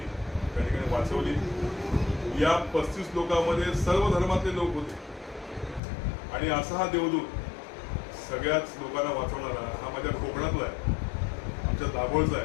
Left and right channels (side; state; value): right; drops out; at 5.8 s